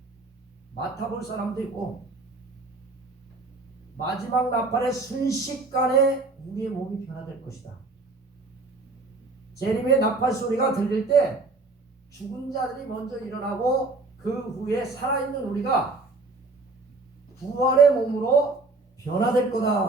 맡아볼 사람도 있고, 마지막 나팔의 순식간에 우리의 몸이 변화될 것이다. 재림의 나팔 소리가 들릴 때 죽은 자들이 먼저 일어나고 그 후에 살아있는 우리가 부활의 몸으로 변화될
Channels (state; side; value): quieter; left; 3.5 dB